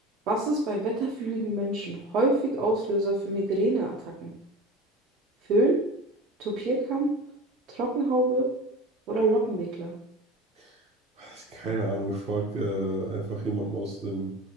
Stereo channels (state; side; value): normal; both; correlation 0.33